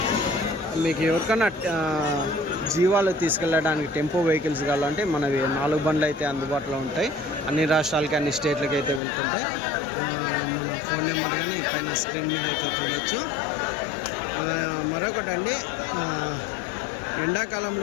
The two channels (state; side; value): drops out; right; at 9.0 s